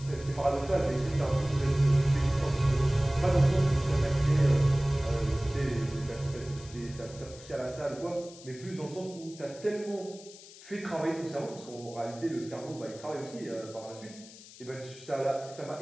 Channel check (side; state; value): left; noise; hiss, 19 dB below the sound